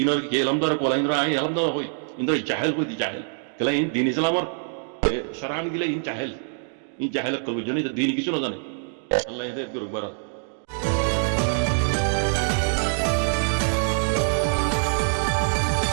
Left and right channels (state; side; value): silent; left; digital silence